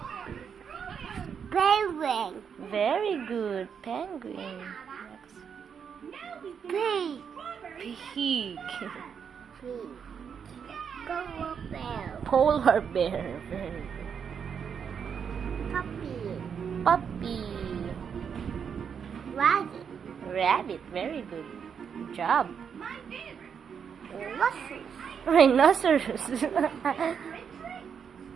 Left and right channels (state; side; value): quieter; left; 7.1 dB